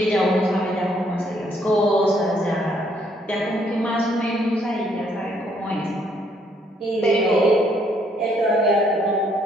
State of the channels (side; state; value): both; normal; correlation 0.68